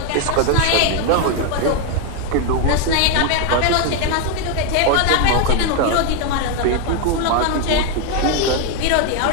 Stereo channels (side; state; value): both; different; correlation 0.01